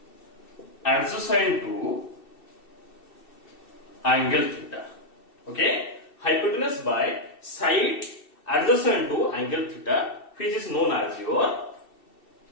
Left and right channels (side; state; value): right; late; 2.7 ms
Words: adjacent to angle theta. Okay? Hypotenuse by side adjacent to angle theta, which is known as your